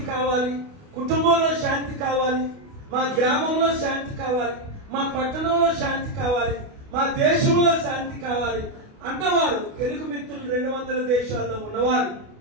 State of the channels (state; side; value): late; left; 28 ms